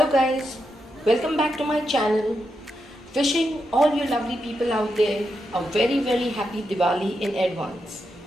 guys, welcome back to my channel. Wishing all you lovely people out there a very happy Diwali in advance.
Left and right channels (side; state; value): both; normal; correlation 0.85